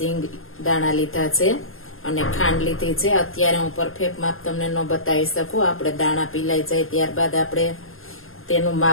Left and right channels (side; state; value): right; late; 0.60 ms